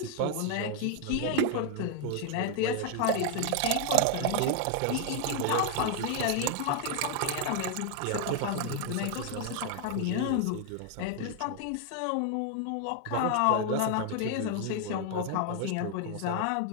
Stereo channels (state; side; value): different; both; correlation 0.00